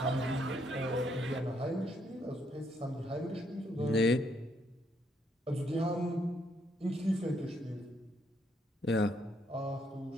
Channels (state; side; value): normal; both; correlation 0.73